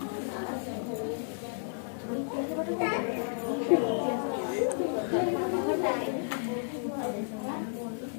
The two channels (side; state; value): right; silent; digital silence